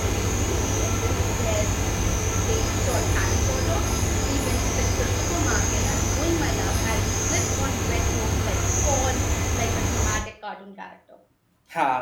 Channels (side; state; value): both; identical; correlation 1.00